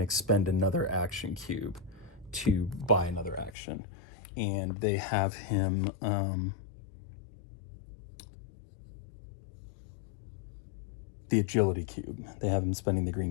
expend another action cube to buy another action. And they have him the agility cube. They have him spending the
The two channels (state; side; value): drops out; right; at 3.5 s